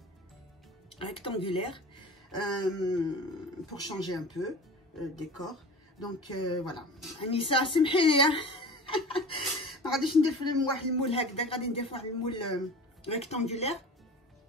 rectangulaire pour changer un peu le décor. Donc voilà. Anissa سمحي لي ما غاديش ندير في واحد المول هكذا، غادي ندير في واحد المول ريكتانغولير.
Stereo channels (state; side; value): normal; both; correlation 0.36